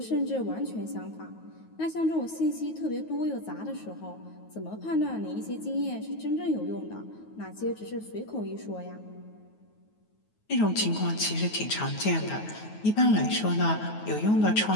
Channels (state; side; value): late; right; 9.3 ms